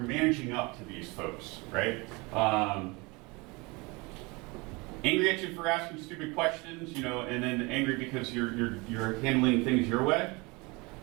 up to these folks, right? Angry at you for asking stupid questions, and then angry because you're handling things your way.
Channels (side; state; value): left; quieter; 26.2 dB